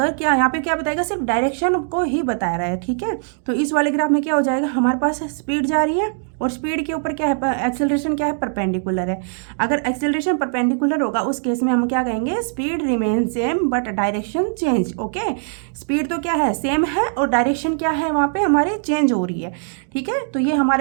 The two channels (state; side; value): silent; left; digital silence